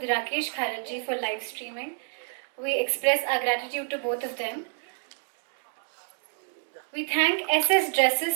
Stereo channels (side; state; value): left; silent; 60 dB below the other